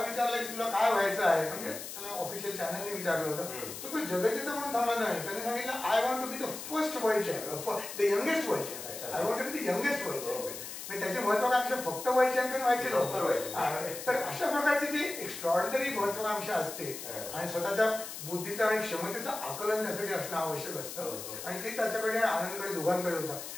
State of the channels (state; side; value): noise; left; hiss, 9 dB below the sound